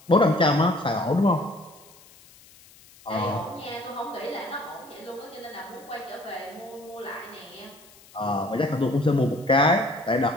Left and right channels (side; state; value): left; noise; hiss, 25 dB below the sound